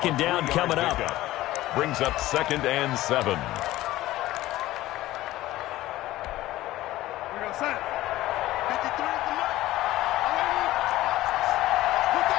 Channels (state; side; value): quieter; right; 16.2 dB